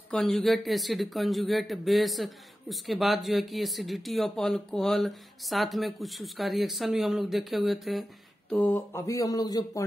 कंजुगेट एसिड, कंजुगेट बेस, उसके बाद जो है कि एसिडिटी ऑफ अल्कोहल, साथ में कुछ उसका रिएक्शन भी हम लोग देखे हुए थे। तो अभी हम लोग जो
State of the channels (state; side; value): normal; both; correlation 0.93